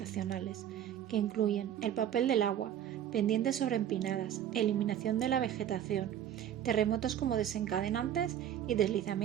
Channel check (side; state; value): left; quieter; 10.4 dB